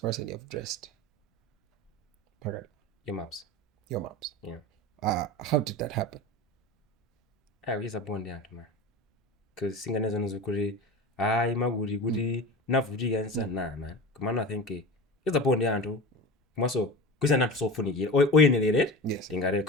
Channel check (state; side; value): normal; both; correlation 0.30